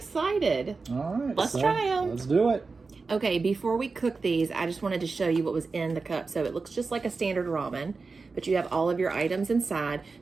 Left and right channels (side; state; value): left; quieter; 4.3 dB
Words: All right, Let's try them. Let's do it. Okay, before we cook these, I just wanted to show you what was in the cup. So it looks just like a standard ramen, but you have all of your items inside.